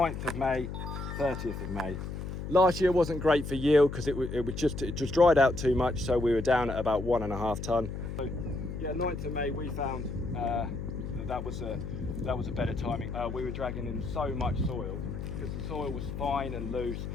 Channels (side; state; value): left; noise; hum, 6 dB below the sound